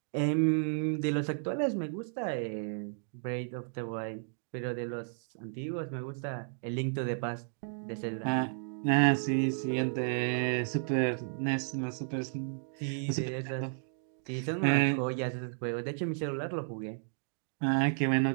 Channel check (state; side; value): silent; left; digital silence